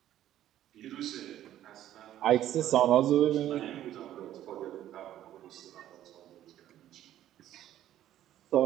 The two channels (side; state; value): left; quieter; 12.3 dB